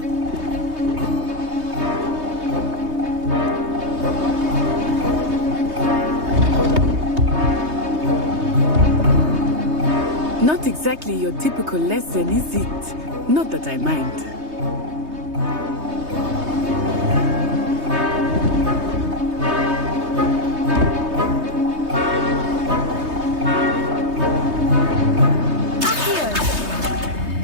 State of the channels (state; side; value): late; left; 3.2 ms